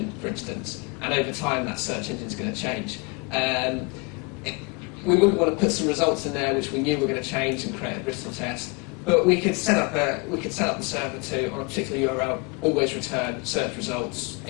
for instance, and over time that search engine is going to change. We wouldn't want to put some results in there which we knew were going to change and create a brittle test. But we could set up the server to, on a particular URL, always return search results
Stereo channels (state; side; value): quieter; right; 29.9 dB